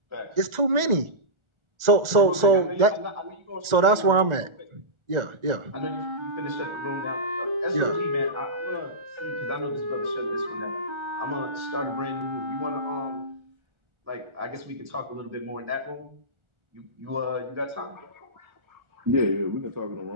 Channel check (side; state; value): left; late; 1.4 ms